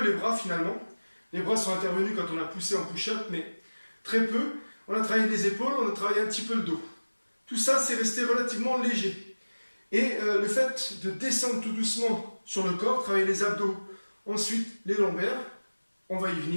les bras finalement. Les bras sont intervenus quand on a poussé en push-up, mais très peu. On a travaillé les épaules, on a travaillé un petit peu le dos. Tout ça, c'est resté relativement léger. Et le fait de descendre tout doucement sur le corps, travailler les abdos, ensuite les lombaires, on va y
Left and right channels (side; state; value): both; inverted; correlation -1.00